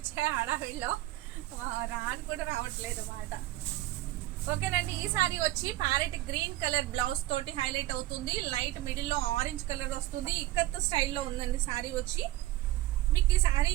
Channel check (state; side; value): quieter; left; 16.0 dB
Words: హడావిడిలో రాని కూడా రావట్లేదు మాట. ఓకేనండి, ఈ సారీ వచ్చి ప్యారెట్ గ్రీన్ కలర్ బ్లౌజ్ తోటి హైలైట్ అవుతుంది. లైట్ మిడిల్లో ఆరెంజ్ కలర్ వస్తుంది. ఇక్కత్ స్టైల్లో ఉందండి శారీ వచ్చి. మీకు ఈ